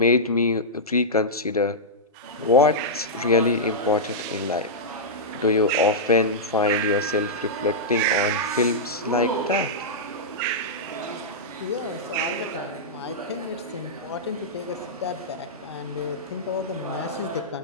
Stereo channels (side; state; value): both; normal; correlation -0.10